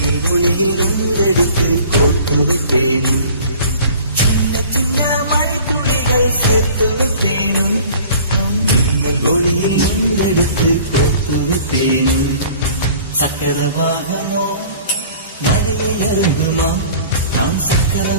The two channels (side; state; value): both; inverted; correlation -0.47